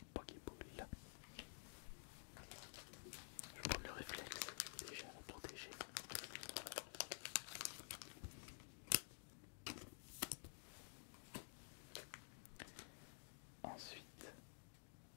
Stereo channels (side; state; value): right; silent; digital silence